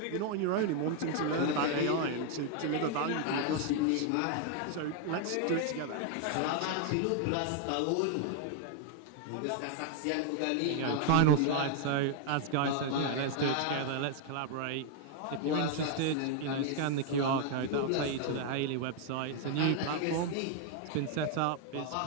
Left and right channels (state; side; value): different; both; correlation 0.00